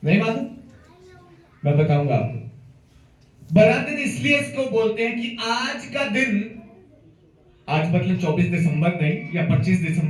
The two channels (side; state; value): both; identical; correlation 1.00